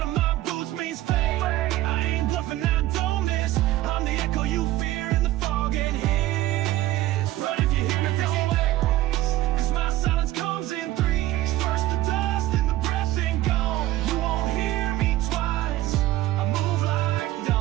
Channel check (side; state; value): left; quieter; 15.5 dB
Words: of my boots means fate. I ain't bluffing, I don't miss. I'm the echo you fear in the fog and hiss. Run if you hear me, don't wait, cause my silence comes in threes. First the dust, then the breath, then gone. You won't hear me twice, I move like